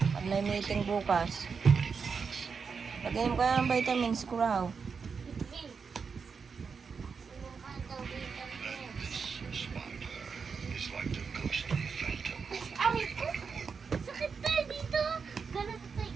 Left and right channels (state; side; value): quieter; left; 5.6 dB